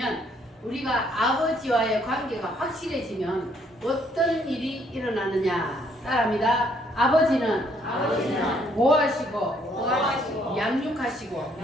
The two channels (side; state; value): both; normal; correlation 0.67